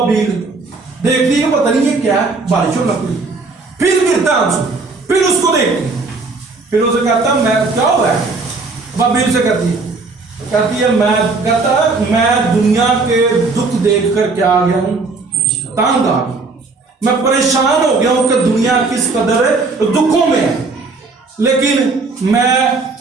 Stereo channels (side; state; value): left; quieter; 3.9 dB